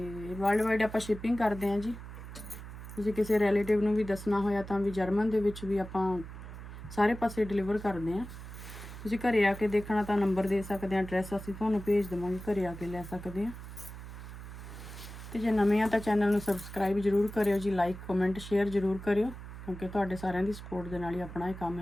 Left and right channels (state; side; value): noise; right; hum, 12 dB below the sound